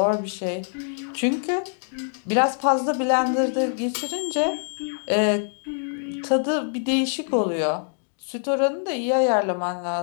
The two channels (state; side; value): silent; right; digital silence